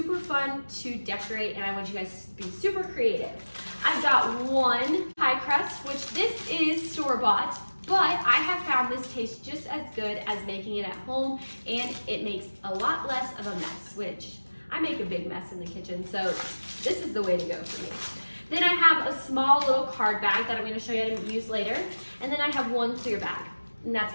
fun to decorate, and I want you guys to be super creative. I've got 1 pie crust, which this is store-bought, but I have found this tastes just as good as making it at home, and it makes a lot less of a mess, which I make a big mess in the kitchen, so this is the way to go for me. Then I have a small little card bag that I'm going to show you how to use later. And then I have 1 clear bag. And that's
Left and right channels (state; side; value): inverted; both; correlation -1.00